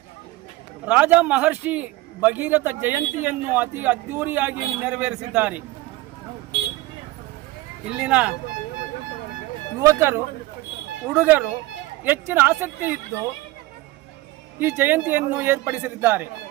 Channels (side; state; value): left; quieter; 18.8 dB